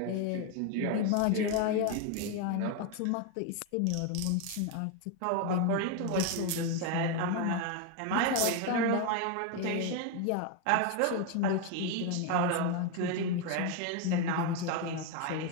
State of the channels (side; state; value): both; different; correlation 0.01